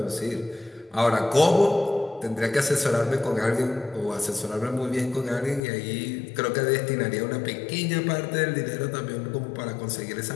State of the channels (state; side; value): drops out; right; at 5.6 s